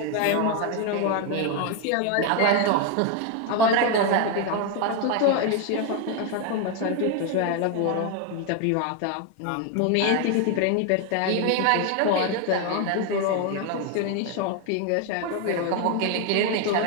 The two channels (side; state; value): both; different; correlation 0.01